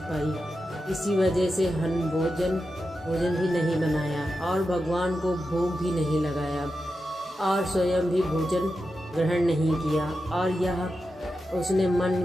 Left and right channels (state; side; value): normal; both; correlation 0.90